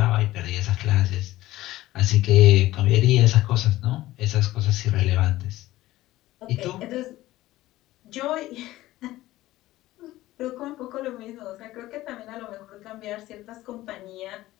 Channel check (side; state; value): right; quieter; 16.5 dB